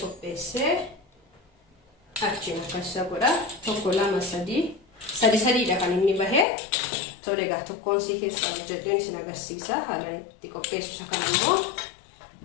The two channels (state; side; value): drops out; right; at 6.5 s